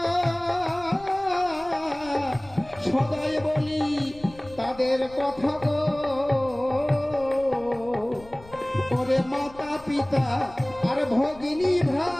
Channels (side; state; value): left; noise; rumble, 21 dB below the sound